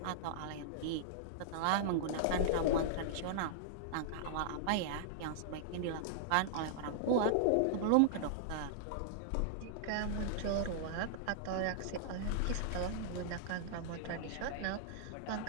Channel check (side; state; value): both; different; correlation -0.01